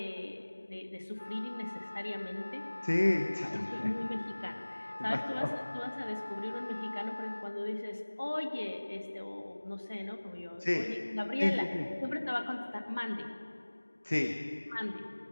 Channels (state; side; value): inverted; both; correlation -1.00